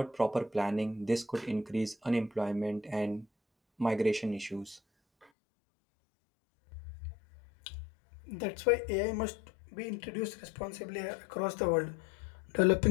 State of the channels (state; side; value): drops out; right; at 5.3 s